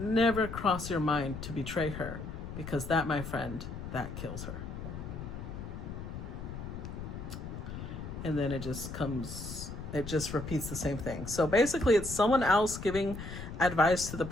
cross your mind to betray her, because that, my friend, that kills her. And then it just comes It just repeats the same thing. So basically it's someone else giving advice to the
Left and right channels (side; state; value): left; noise; rumble, 8 dB below the sound